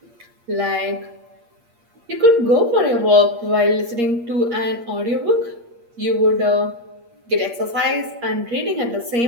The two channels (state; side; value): late; left; 8.5 ms